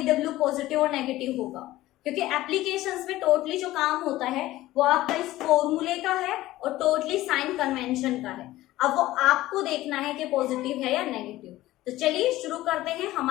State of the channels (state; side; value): quieter; right; 16.4 dB